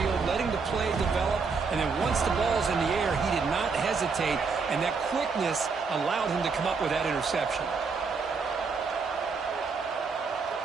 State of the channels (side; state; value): left; quieter; 4.9 dB